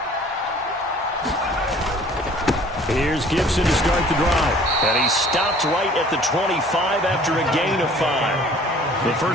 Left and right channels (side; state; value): both; normal; correlation 0.52